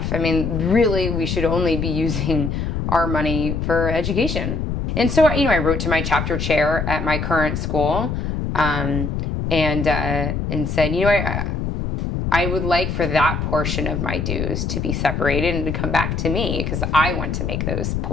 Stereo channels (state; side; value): noise; left; rumble, 2 dB below the sound